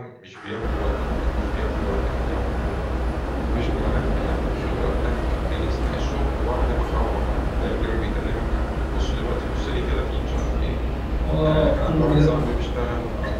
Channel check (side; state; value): both; identical; correlation 1.00